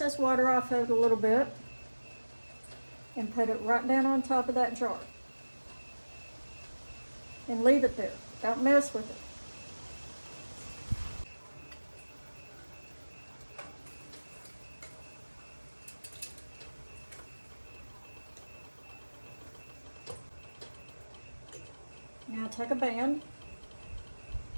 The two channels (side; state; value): both; inverted; correlation -1.00